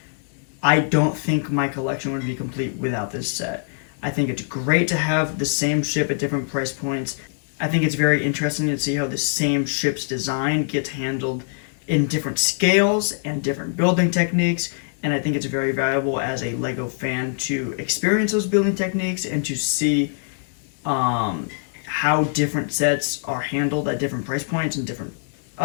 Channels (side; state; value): right; silent; 63 dB below the other